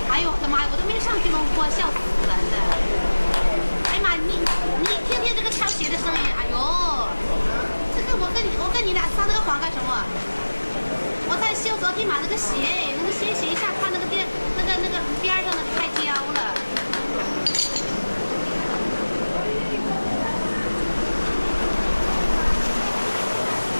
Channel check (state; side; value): inverted; both; correlation -1.00